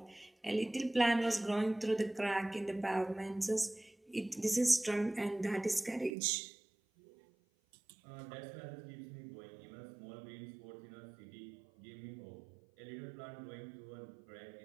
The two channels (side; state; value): left; drops out; at 6.1 s